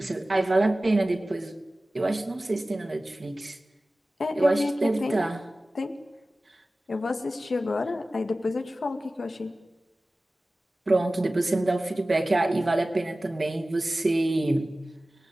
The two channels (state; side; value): normal; both; correlation 0.96